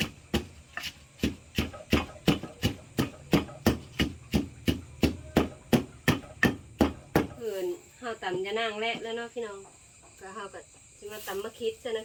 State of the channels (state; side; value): identical; both; correlation 1.00